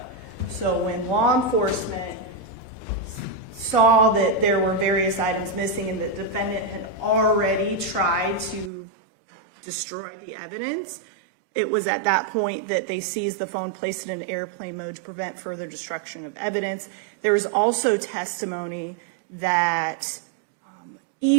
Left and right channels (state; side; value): drops out; left; at 8.7 s